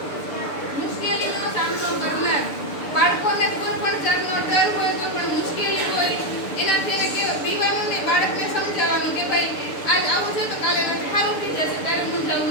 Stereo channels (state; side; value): late; right; 6.8 ms